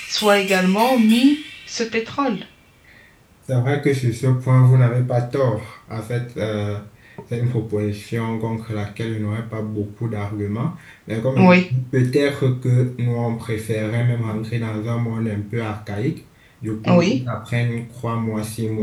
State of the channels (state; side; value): identical; both; correlation 1.00